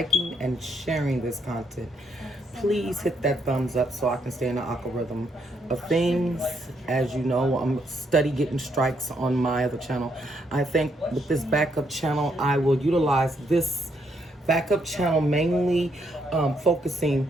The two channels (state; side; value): normal; both; correlation 0.74